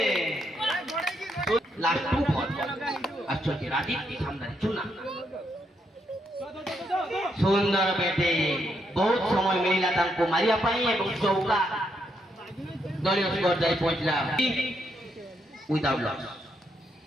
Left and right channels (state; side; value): normal; both; correlation 0.78